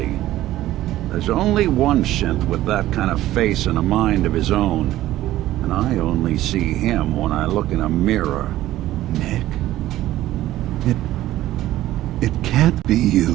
There's only one synth with that kind of face and a mind of his own, and I only see him when I look in a mirror. Nick? It can't be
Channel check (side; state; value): left; quieter; 14.7 dB